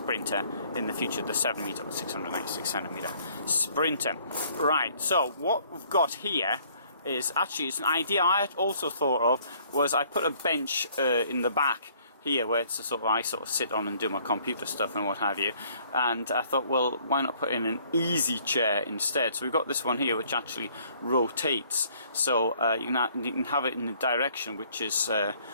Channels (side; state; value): both; inverted; correlation -0.61